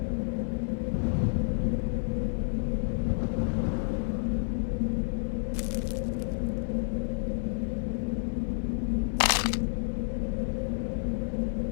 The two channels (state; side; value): silent; right; 58 dB below the other